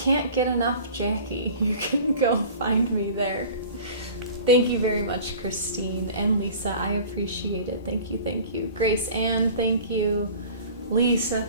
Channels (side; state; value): both; inverted; correlation -0.42